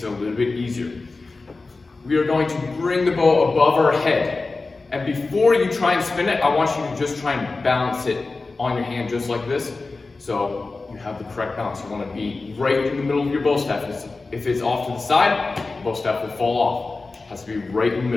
it a little bit easier. We are going to bring the bow above our head. And before you try and spin it, I want you to just try and balance it on your hand just like this. So you have the correct balance. You want to be right in the middle of your bow staff. If it's off to the side, the bow staff will fall off. It has to be right in the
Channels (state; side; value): quieter; right; 3.7 dB